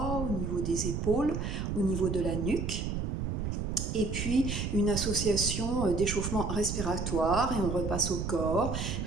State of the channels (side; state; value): right; noise; rumble, 2 dB below the sound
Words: au niveau des épaules, au niveau de la nuque. Et puis une association d'échauffement respiratoire et on repasse au corps,